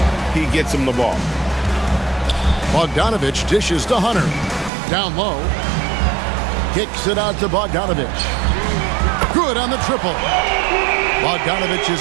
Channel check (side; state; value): left; drops out; at 4.7 s